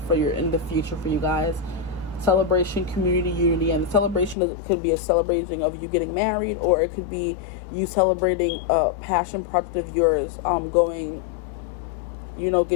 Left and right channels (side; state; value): right; drops out; at 4.4 s